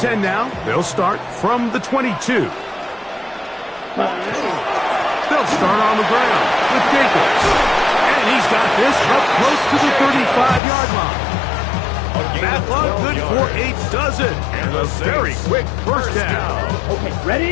now. They'll start from the 22. They'll start on the ground with Jacobs. And he's got this up close to the 35-yard line. That one good for 8 does it. And a very quick first down. Okay,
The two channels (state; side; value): drops out; right; at 10.6 s